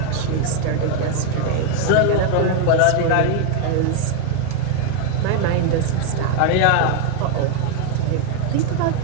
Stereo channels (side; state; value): both; different; correlation 0.01